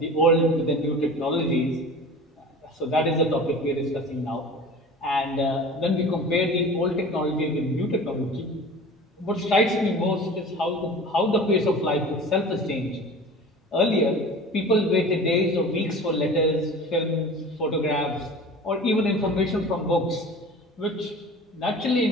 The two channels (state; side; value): normal; both; correlation 0.38